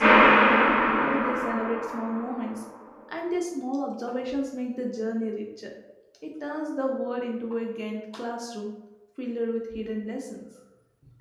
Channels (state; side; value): identical; both; correlation 1.00